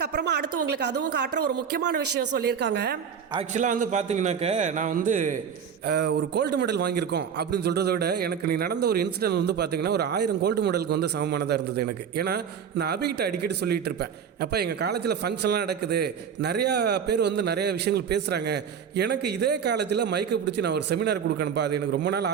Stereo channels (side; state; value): left; quieter; 7.5 dB